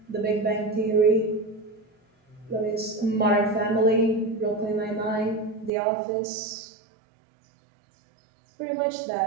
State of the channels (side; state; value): left; drops out; at 5.7 s